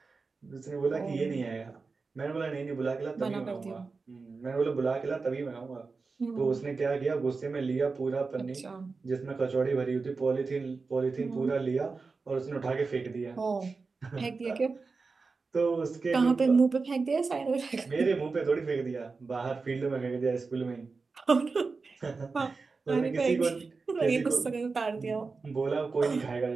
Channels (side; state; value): left; quieter; 4.3 dB